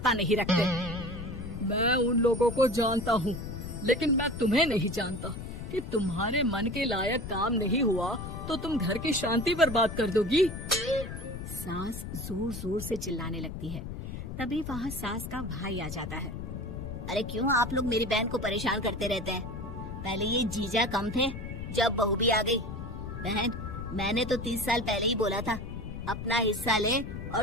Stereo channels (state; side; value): noise; left; rumble, 8 dB below the sound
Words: नहीं रखते। मैं उन लोगों को जानता हूँ, लेकिन मैं तुम्हें नहीं जानता कि तुम्हारे मन के लायक काम नहीं हुआ तो तुम घर की शांति बर्बाद कर दोगी। सास जोर जोर से चिल्लाने लगती है। तभी वहाँ सास का भाई आ जाता है। अरे क्यों आप लोग मेरी बहन को परेशान करते रहते हैं? पहले ये जीजा कम थे, जब बहू भी आ गई। बहन, मैंने तो 30 साल पहले ही बोला था, अपना हिस्सा ले